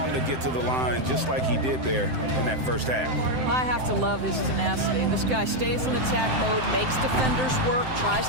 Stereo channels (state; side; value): late; left; 7.7 ms